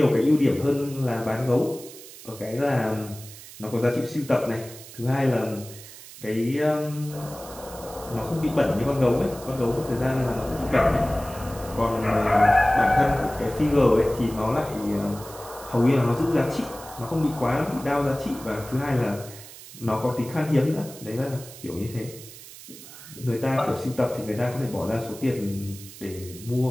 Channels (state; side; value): noise; right; hiss, 16 dB below the sound